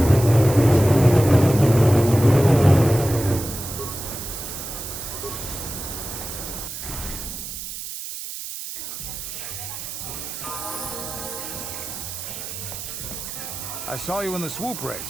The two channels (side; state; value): right; noise; hiss, 8 dB below the sound